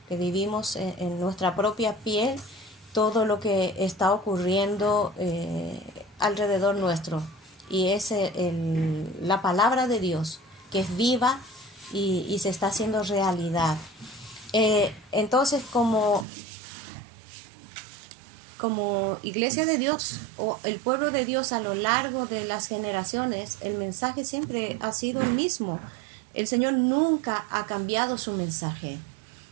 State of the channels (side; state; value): left; drops out; at 16.2 s